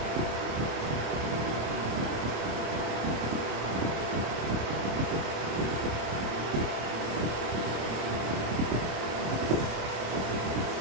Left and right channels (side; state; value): left; late; 27 ms